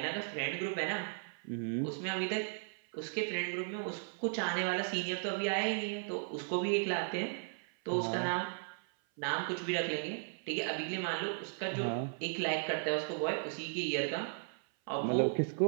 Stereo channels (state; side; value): silent; left; 54 dB below the other